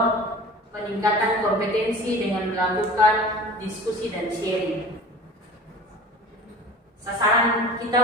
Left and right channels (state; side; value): normal; both; correlation 0.40